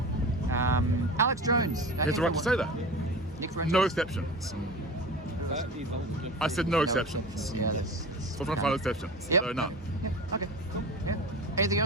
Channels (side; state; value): both; normal; correlation 0.32